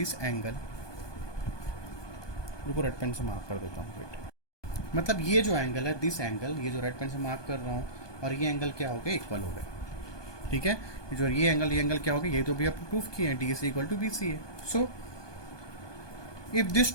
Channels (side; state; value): right; late; 1.2 ms